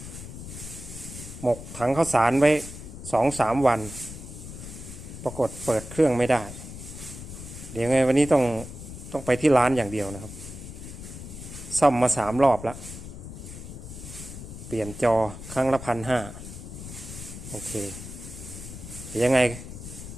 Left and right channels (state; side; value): noise; left; rumble, 11 dB below the sound